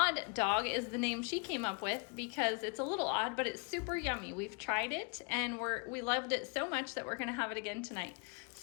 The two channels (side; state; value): right; quieter; 33.2 dB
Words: dog is the name she came up with because it's a little odd, but it's super yummy. We've tried it and we loved it so much that we're gonna have it again tonight.